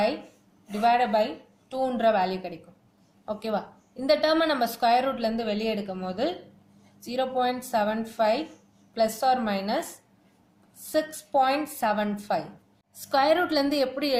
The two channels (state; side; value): identical; both; correlation 1.00